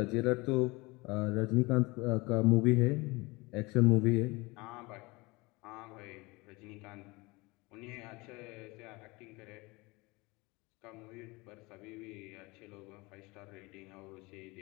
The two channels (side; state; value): right; quieter; 24.1 dB